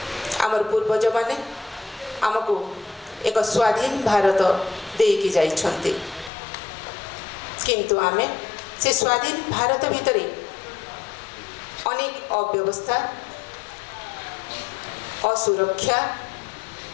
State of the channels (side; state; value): right; drops out; at 6.3 s